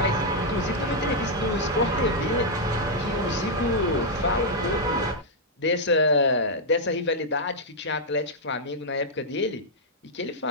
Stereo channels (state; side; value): normal; both; correlation -0.05